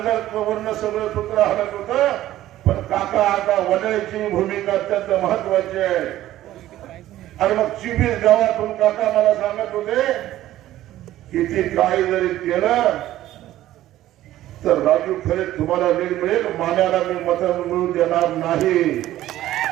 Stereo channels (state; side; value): quieter; left; 14.1 dB